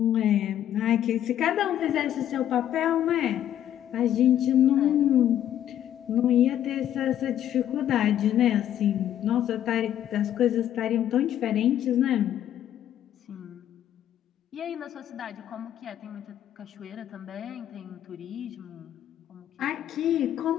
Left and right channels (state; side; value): quieter; right; 11.0 dB